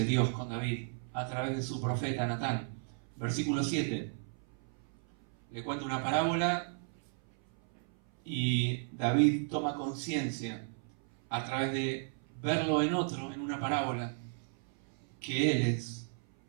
Dios con David a través de su profeta Natán. Versículo 7. Le cuenta una parábola y David toma conciencia a través de verlo en otro, en una parábola, que él es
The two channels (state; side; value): silent; left; 55 dB below the other